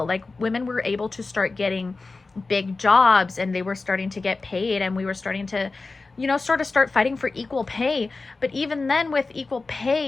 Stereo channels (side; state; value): right; quieter; 3.8 dB